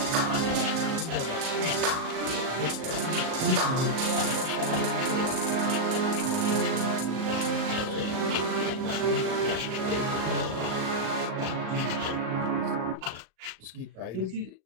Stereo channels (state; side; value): late; left; 38 ms